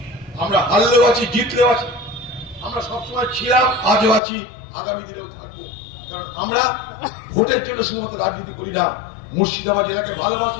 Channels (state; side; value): drops out; right; at 4.2 s